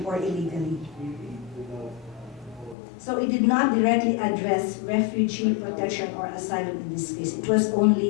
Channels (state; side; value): drops out; right; at 2.8 s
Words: or illegally. So it did not directly address refugee protection or asylum in this case. It was